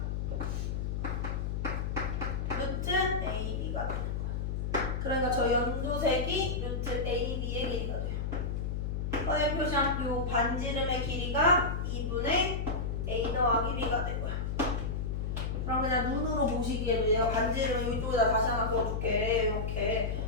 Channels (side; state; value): left; noise; hum, 1 dB below the sound